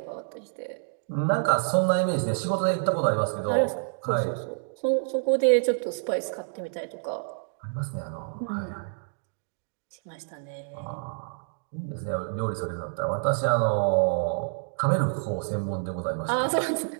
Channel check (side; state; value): left; silent; digital silence